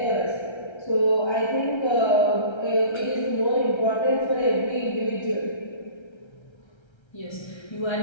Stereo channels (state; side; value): late; right; 1.3 ms